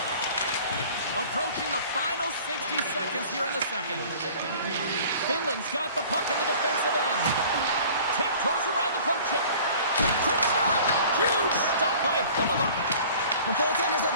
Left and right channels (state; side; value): inverted; both; correlation -0.47